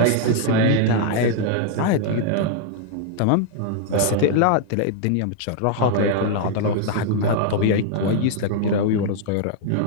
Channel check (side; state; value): both; different; correlation 0.00